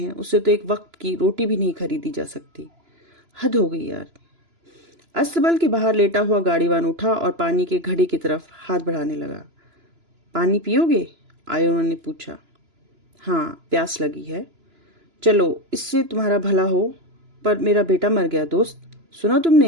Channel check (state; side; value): late; left; 2.9 ms